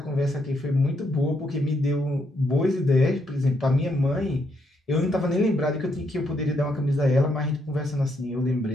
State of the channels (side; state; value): both; normal; correlation 0.76